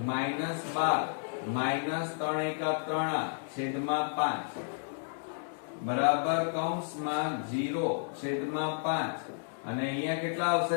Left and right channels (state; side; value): silent; right; digital silence